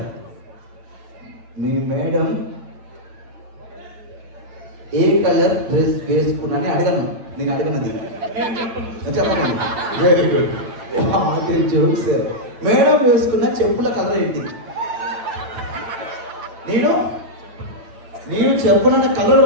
మీ మేడం ఏ కలర్ డ్రెస్ వేసుకున్నాని అడగను, నేను అడగనది చెప్పండి. Very good, joke sir. Madam వేసుకున్న చెప్పుల కలర్ ఏంటి? నేను చెప్పిన కలర్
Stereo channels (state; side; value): late; left; 8.9 ms